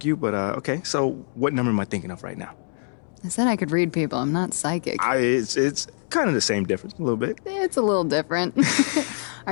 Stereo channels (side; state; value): right; silent; digital silence